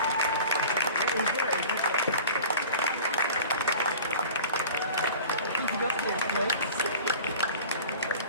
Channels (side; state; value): both; inverted; correlation -0.41